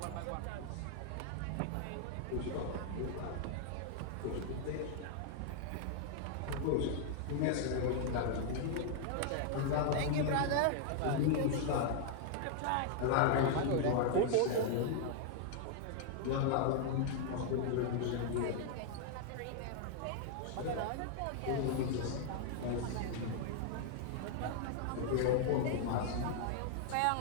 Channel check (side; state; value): both; different; correlation 0.00